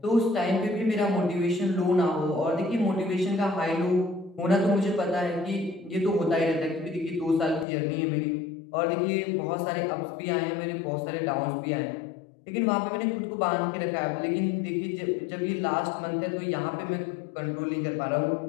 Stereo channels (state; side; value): drops out; right; at 7.7 s